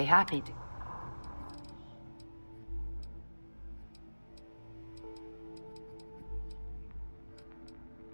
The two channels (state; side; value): inverted; both; correlation -1.00